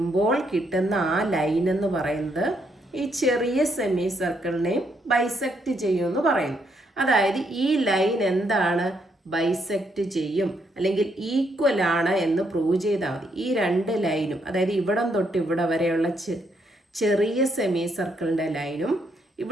കിട്ടുന്ന ആ ലൈൻ എന്ന് പറയുന്നത് ഈ ചെറിയ സെമി സർക്കിളിനെയും ബൈസെക്റ്റ് ചെയ്യുമെന്ന് പറയുന്നു. അതായത് ഈ ലൈൻ എന്താണ്? ബൈസെക്റ്റ് ചെയ്യും, അല്ലെങ്കിൽ ഈക്വൽ ആണ് എന്ന് പ്രൂവ് ചെയ്താൽ മതി. ഈ രണ്ട് ലൈനും, അതായത് ഇവിടം തൊട്ട് ഇവിടെ വരെയുള്ള ചെറിയ സെമി സർക്കിളിൻ്റെ ലൈനും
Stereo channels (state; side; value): normal; both; correlation 0.75